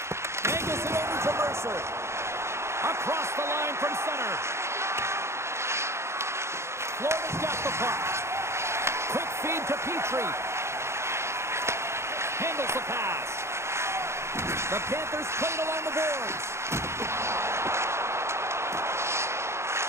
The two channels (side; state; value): left; late; 0.13 ms